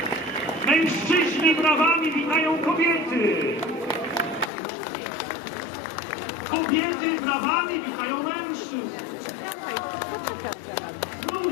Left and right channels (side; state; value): right; drops out; at 4.5 s